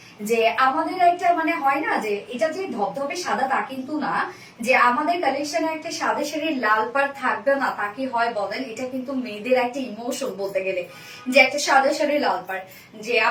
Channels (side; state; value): both; identical; correlation 1.00